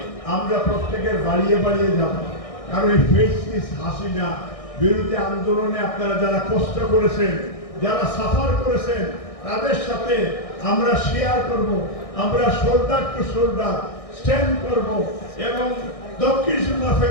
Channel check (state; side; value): late; right; 1.6 ms